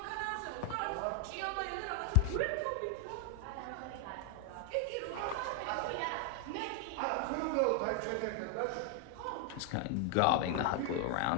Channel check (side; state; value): both; different; correlation 0.00